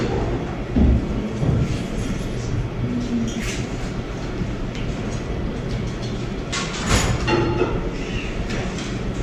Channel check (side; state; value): both; identical; correlation 1.00